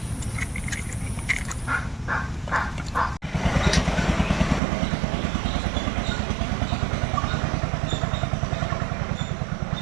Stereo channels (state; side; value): drops out; left; at 4.6 s